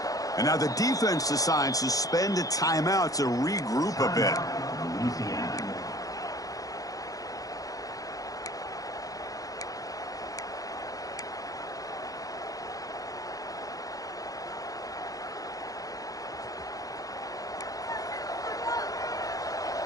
15. And now the defense decides to spend a timeout to regroup a bit.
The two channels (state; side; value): late; right; 0.17 ms